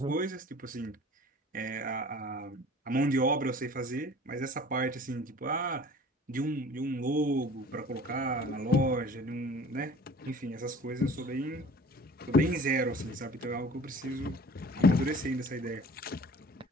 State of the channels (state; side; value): normal; both; correlation 0.45